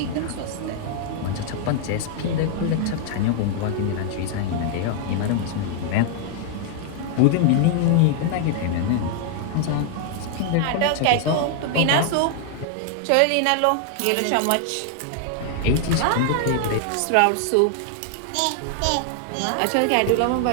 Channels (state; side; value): different; both; correlation 0.00